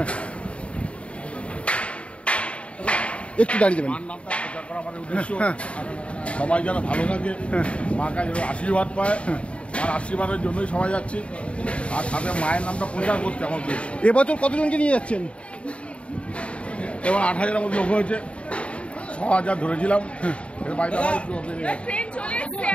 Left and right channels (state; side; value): late; right; 0.061 ms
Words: একটু দাঁড়িয়ে যাবেন। মার নামটা প্রচার করা আমাদের উদ্দেশ্য। সবাই যেন ভালো থাকে, মাকে যেন আশীর্বাদ পায়, আর আশীর্বাদের জন্যই সবাই যাচ্ছি। আর সাথে মায়ের নামটা প্রচার করতে আমার উদ্দেশ্য। এবছর কতজনকে নিয়ে যাচ্ছেন? এবার 8000-এর মধ্যে লোক হয়েছে, 6000 ধরেছিলাম। এর বাইরে আবার একটু বেড়ে গেছে।